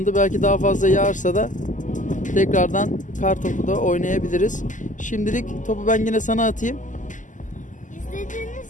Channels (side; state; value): right; late; 0.37 ms